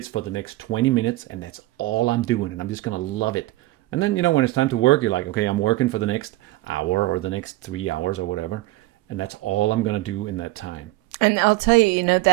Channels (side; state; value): left; quieter; 18.6 dB